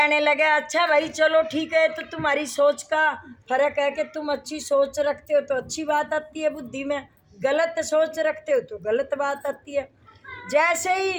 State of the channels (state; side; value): identical; both; correlation 1.00